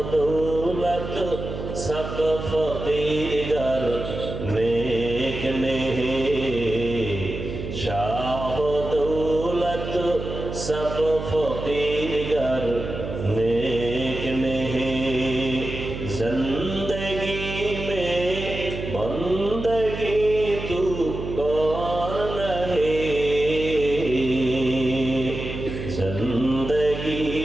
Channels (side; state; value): right; noise; hum, 7 dB below the sound